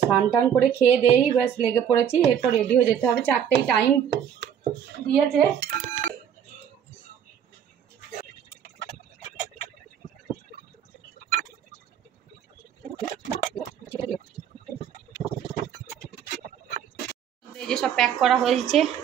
টান করে খেয়ে দেই, ব্যাস লেগে পড়েছি, এরপর রেডি হয়ে যেতে হবে। 4টেই টাইম দিয়েছে। এই যে সব প্যাক করা হয়েছে।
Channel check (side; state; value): left; quieter; 8.8 dB